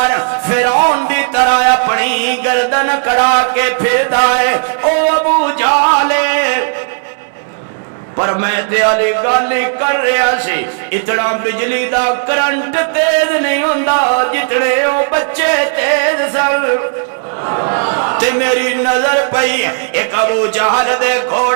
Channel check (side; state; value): left; silent; 61 dB below the other